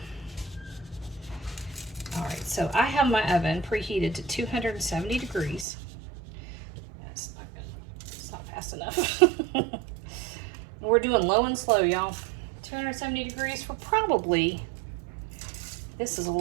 All right, so I have my oven preheated to 270 degrees. That's not good. It's not fast enough. We're doing low and slow, y'all. 270 degrees for probably, this is a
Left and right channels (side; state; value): left; drops out; at 5.7 s